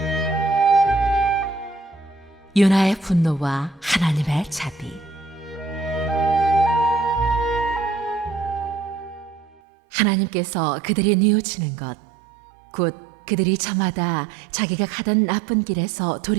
요나의 분노와 하나님의 자비. 하나님께서 그들이 뉘우치는 것, 곧 그들이 저마다 자기가 가던 나쁜 길에서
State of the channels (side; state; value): left; drops out; at 9.6 s